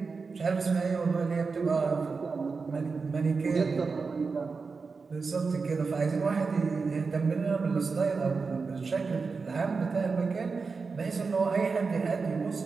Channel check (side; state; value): left; quieter; 4.6 dB